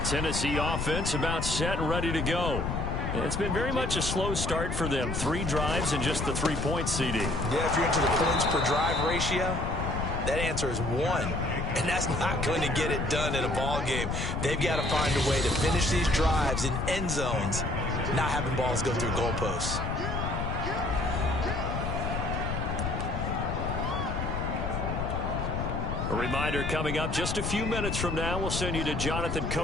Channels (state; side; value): noise; left; rumble, 2 dB below the sound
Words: Tennessee offense about set and ready to go. It's been very much a slow start for them. 3 drives and just the 3 points, CD. Yeah, if you're into the points per drive ratio, that answer is 1. And that's not going to get it done in a ball game. They've got to find a way to finish these drives in end zones, not having balls go through goalposts. A reminder coming up just a few minutes from now, we'll send you to Jonathan